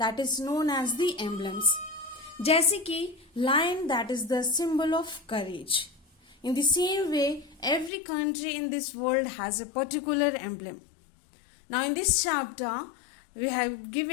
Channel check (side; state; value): right; drops out; at 7.9 s